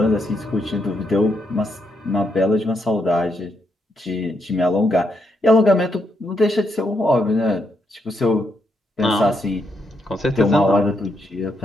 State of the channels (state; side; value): normal; both; correlation 0.79